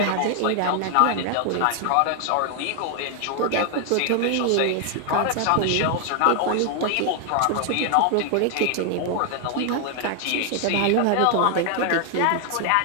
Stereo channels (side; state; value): both; different; correlation 0.00